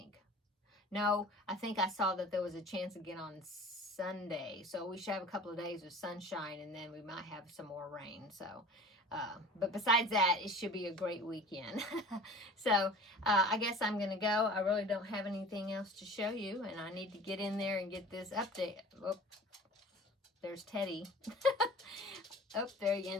No, I think I saw that there was a chance again on Sunday. So we should have a couple of days of sunshine, and then we might have some more rain. So, but besides that, it should be a great weekend. So I guess I'm going to go. I really don't have anything else to show you, and I need to get in there and get this update. Oh, there's Teddy. Oh, there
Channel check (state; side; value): normal; both; correlation 0.42